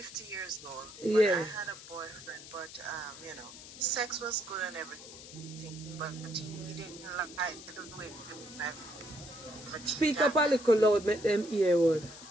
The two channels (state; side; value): noise; left; hiss, 15 dB below the sound